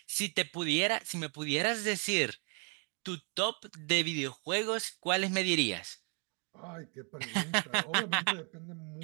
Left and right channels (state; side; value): quieter; left; 38.5 dB